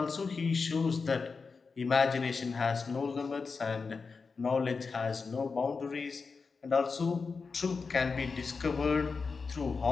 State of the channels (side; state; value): right; quieter; 4.8 dB